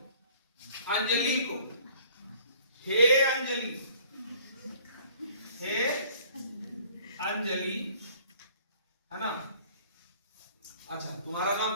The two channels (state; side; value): inverted; both; correlation -0.54